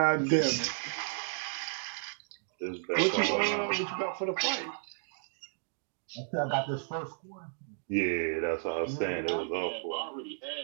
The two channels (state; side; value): silent; left; digital silence